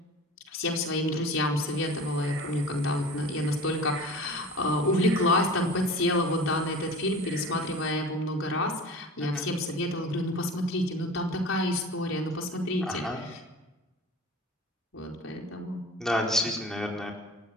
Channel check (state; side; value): normal; both; correlation 0.38